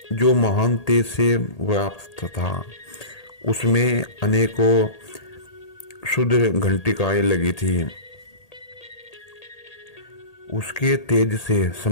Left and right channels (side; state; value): right; late; 1.8 ms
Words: जो महान तेज से व्याप्त था। उसमें अनेकों शुद्ध घंटिकाएं लगी थी। उसके तेज से